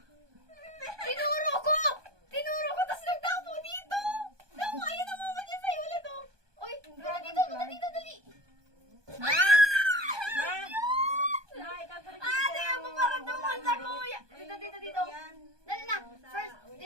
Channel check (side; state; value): left; late; 1.2 ms